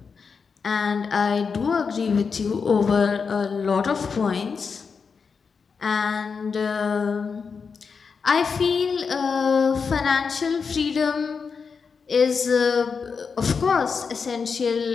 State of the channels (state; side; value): quieter; right; 5.5 dB